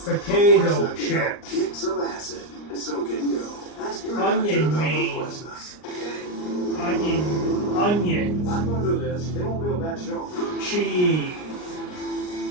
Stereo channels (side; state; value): right; late; 39 ms